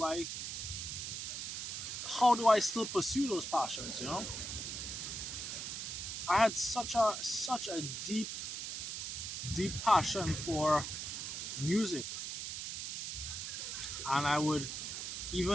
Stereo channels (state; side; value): noise; right; hiss, 5 dB below the sound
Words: how do I still pursue those passions? I had such a deep passion for music, and I would